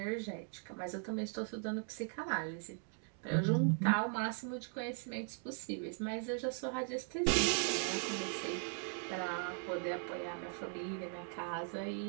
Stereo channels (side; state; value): left; silent; 52 dB below the other